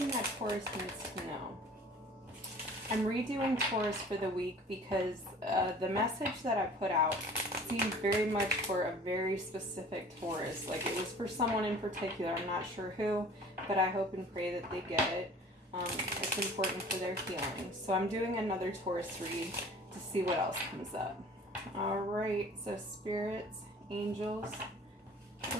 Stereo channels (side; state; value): both; normal; correlation 0.47